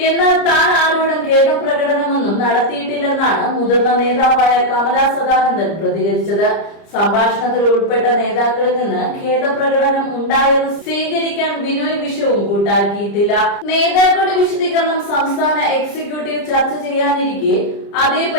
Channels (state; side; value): late; right; 30 ms